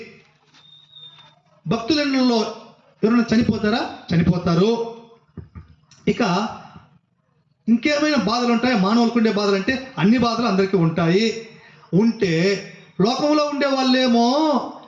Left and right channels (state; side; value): identical; both; correlation 1.00